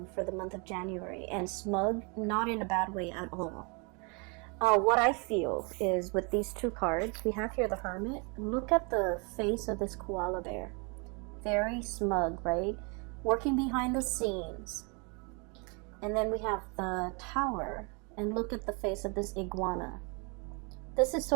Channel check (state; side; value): quieter; left; 33.2 dB